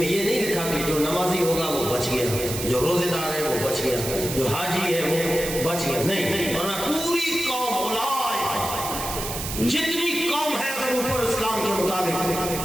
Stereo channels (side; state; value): right; noise; hiss, 6 dB below the sound